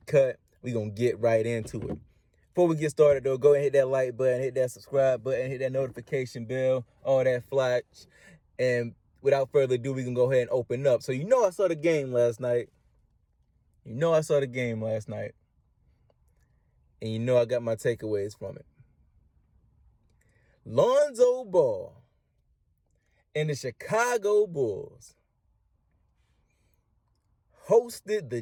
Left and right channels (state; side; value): identical; both; correlation 1.00